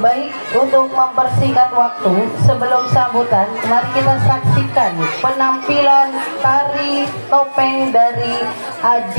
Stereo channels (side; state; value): both; inverted; correlation -1.00